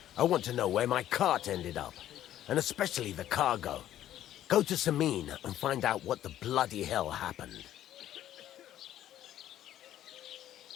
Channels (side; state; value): right; quieter; 12.2 dB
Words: I want to know where my cart ended up, and especially the cargo. Go to Semine and find out what the bloody hell happened.